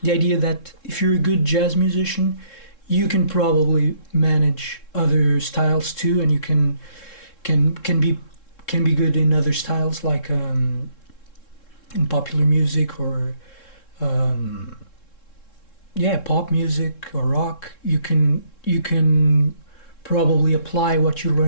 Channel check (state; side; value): late; right; 3.7 ms